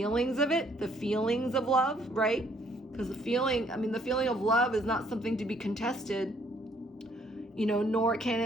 of it, the feelings of love, right? Because the feeling of love is not something to be contested, you know, nor can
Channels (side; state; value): both; normal; correlation 0.65